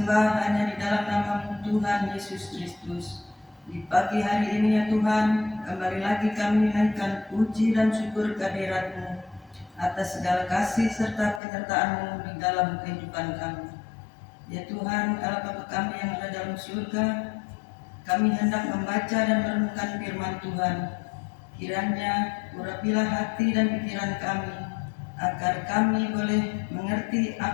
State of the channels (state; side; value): drops out; right; at 11.4 s